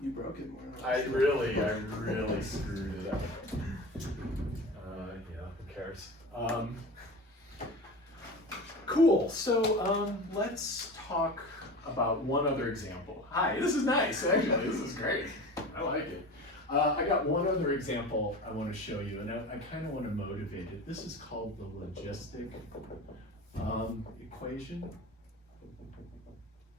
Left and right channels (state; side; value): normal; both; correlation 0.33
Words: broke it more than I really screwed it up. Yeah, who cares? Cool, so let's talk about one other example. Hi, this is nice, actually, this is great. I like it. I got one other example I want to show you, and I kind of want to motivate it. This is called the logistic equation.